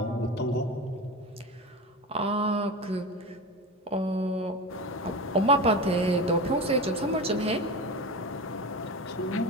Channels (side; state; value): both; normal; correlation 0.26